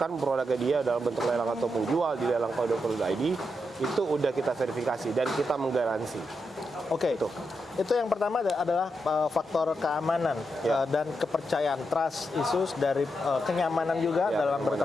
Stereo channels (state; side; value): normal; both; correlation 0.84